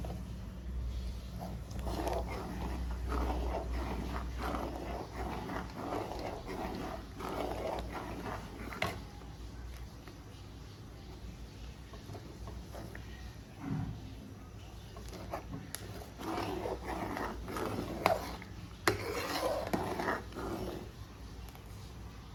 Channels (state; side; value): identical; both; correlation 1.00